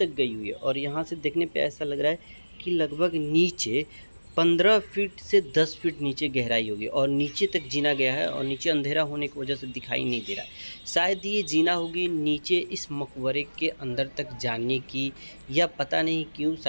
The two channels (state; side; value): inverted; both; correlation -1.00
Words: गई हुई है और यहाँ से देखने पे ऐसा लग रहा है कि लगभग नीचे 15 फीट से 10 फीट नीचे गहराई होगी और नीचे तक जीना गया है और नीचे अंधेरा होने की वजह से दिखाई नहीं दे रहा है। शायद ये जीना होगी नीचे इस मकबरे के अंदर तक जाने की, या पता नहीं क्यों,